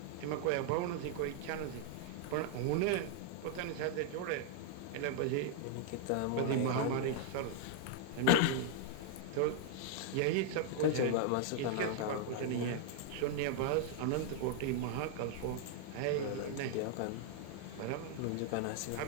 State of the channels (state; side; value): different; both; correlation 0.00